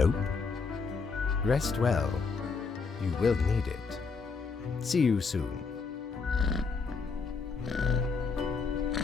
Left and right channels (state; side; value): quieter; right; 4.9 dB